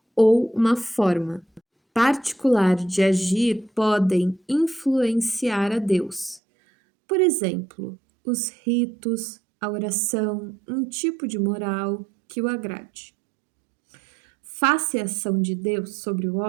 ou uma forma particular de agir podem influenciar a Deus. Por exemplo, os ritos, a oração, um tipo de moral que o agrade. Face à ação de Deus sobre o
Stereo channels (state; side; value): drops out; left; at 6.4 s